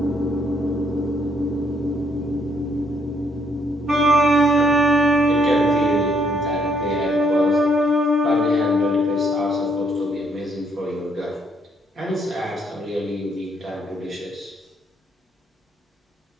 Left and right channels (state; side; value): normal; both; correlation 0.71